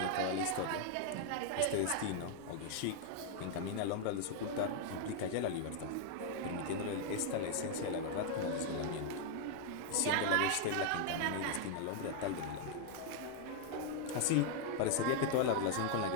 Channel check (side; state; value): both; different; correlation 0.00